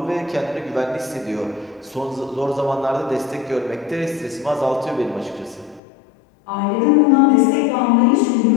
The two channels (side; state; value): right; drops out; at 5.8 s